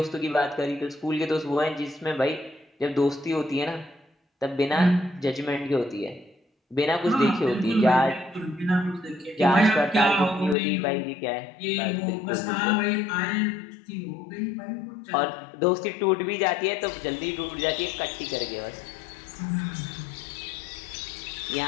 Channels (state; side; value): drops out; right; at 10.6 s